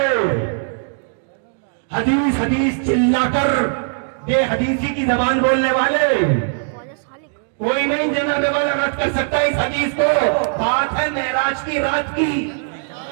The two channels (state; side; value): silent; left; digital silence